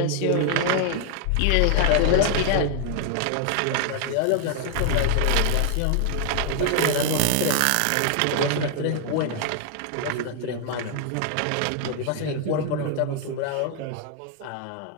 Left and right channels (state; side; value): different; both; correlation 0.00